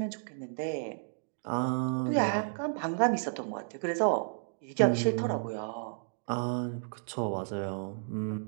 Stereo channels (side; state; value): left; silent; digital silence